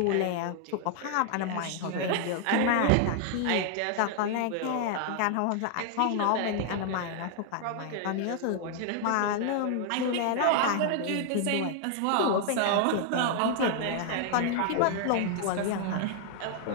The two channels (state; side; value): different; both; correlation 0.00